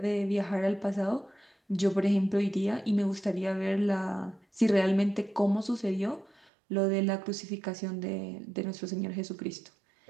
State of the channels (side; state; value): left; drops out; at 6.5 s